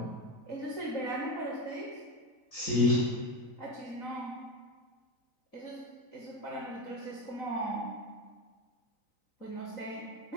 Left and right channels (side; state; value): right; late; 3.9 ms